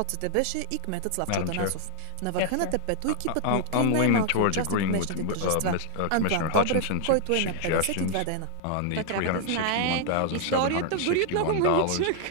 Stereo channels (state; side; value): different; both; correlation 0.00